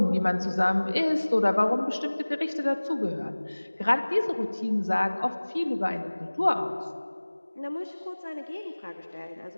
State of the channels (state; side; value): inverted; both; correlation -1.00